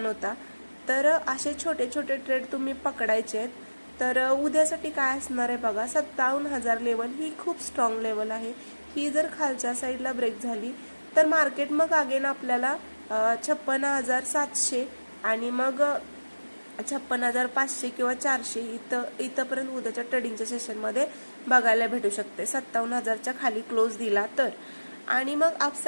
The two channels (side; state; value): both; inverted; correlation -1.00